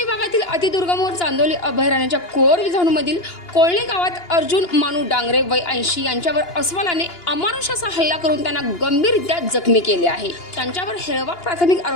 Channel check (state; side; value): late; right; 2.9 ms